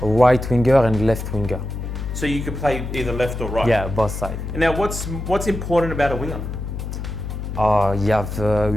A right winger and left winger. So you could play either left or right? Yeah, both sides. And now what's important about a winger? You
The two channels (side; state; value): left; noise; hum, 6 dB below the sound